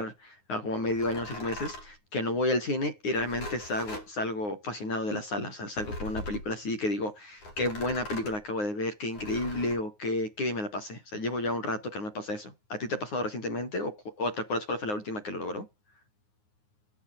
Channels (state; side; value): late; right; 9.6 ms